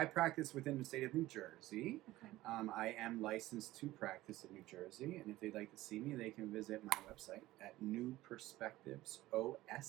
practice within the state of New Jersey. Okay. I am licensed to practice in New Jersey, and if they'd like to see me, they can visit my website at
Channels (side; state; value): left; quieter; 16.9 dB